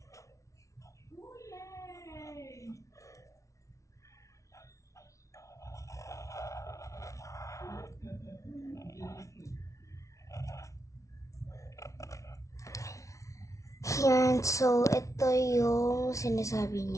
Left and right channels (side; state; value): right; late; 0.15 ms